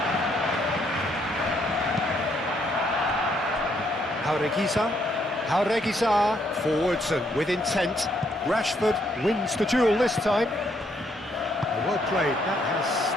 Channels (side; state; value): both; normal; correlation 0.72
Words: Jauregui forwards and with intent. Rashford wins the duel this time. Well played, that has